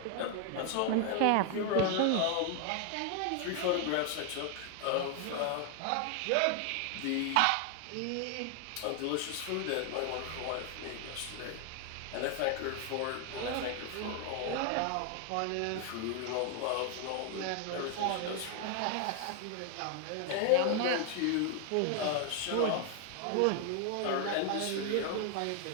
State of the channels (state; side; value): different; both; correlation 0.00